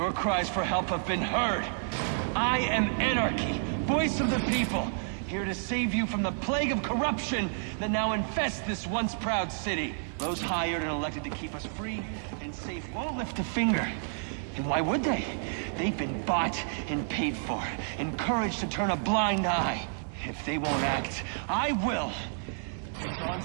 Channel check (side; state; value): left; silent; digital silence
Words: cries for help have been heard. I am Anarchy, voice of the people, here to save you from the plague of corruption that now infests this once proud city. Those hired and elected to keep us free and safe won't lift a finger. And why would they? They've been bought and paid for, encouraged to turn a blind eye. If they won't act, I will.